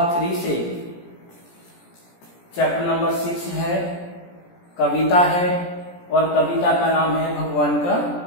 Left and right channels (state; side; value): late; right; 17 ms